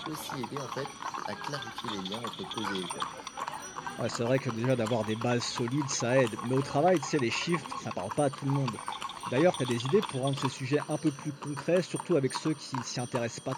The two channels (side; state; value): both; identical; correlation 1.00